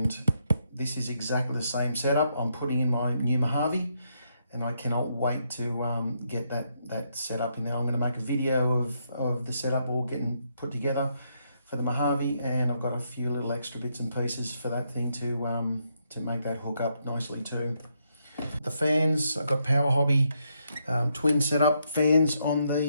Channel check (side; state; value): both; inverted; correlation -0.77